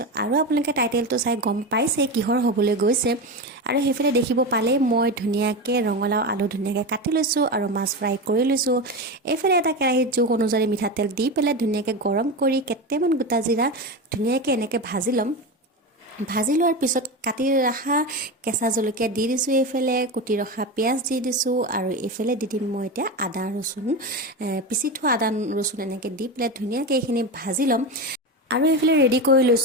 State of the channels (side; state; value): both; normal; correlation 0.20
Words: আৰু আপোনালোকে টাইটেলটো চাই গম পাইছে কিহৰ হ'বলৈ গৈছে আৰু হেফালে দেখিব পালে মই ধুনিয়াকে ৰঙালাও আলু ধুনিয়াকে কাটি লৈছো আৰু মাছ ফ্ৰাই কৰি লৈছো এফালে এটা কেৰাহীত জোখ অনুযায়ী মিঠা তেল দি পেলাই ধুনিয়াকে গৰম কৰি কেটেমান গোটা জিৰা ধুনিয়াকে এনেকে ভাজি লম ভাজি লোৱাৰ পিছত কাটি ৰাখা কেঁচা জলকীয়া দি দিছো এফালে কুটি ৰখা পিয়াজ দি দিছো আৰু এফালে দি দিম মই এতিয়া আদা ৰসুন পিছি থোৱা আদা ৰসুন এনেকে দি পেলাই ধুনিয়াকে এইখিনি ভাজি লম আৰু এফালে ৰেডি কৰি